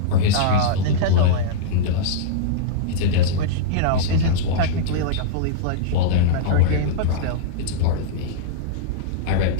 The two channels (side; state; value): both; different; correlation -0.03